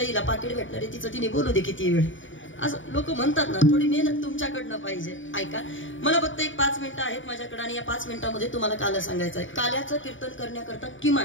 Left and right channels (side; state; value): right; late; 0.56 ms